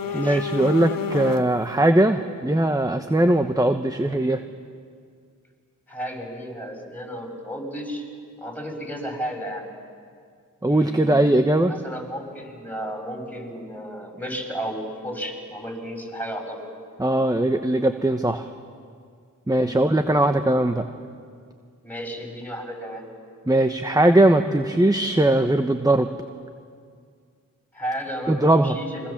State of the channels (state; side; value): normal; both; correlation 0.77